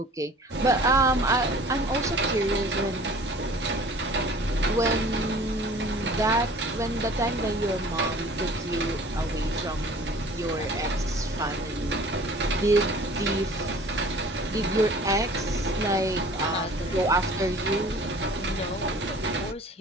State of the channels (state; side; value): normal; both; correlation 0.47